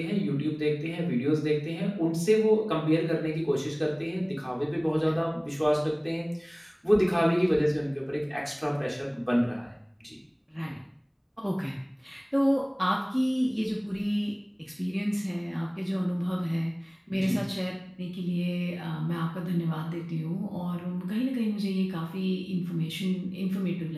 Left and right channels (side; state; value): both; identical; correlation 1.00